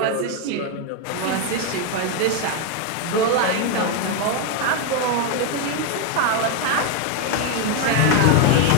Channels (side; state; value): both; different; correlation 0.01